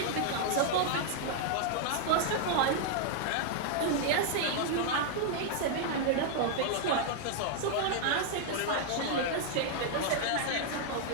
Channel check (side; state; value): both; different; correlation 0.00